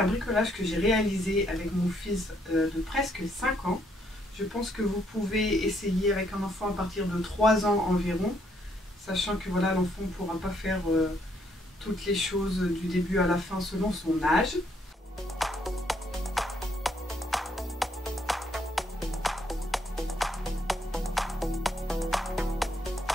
bricolage que j'ai réalisé avec mon fils de presque 5 ans. Je pense que vous pouvez essayer avec un enfant à partir de 3 ans environ, sachant que voilà, l'enfant ne pourra pas faire toutes les choses du début à la fin selon son âge.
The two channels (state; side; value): normal; both; correlation 0.71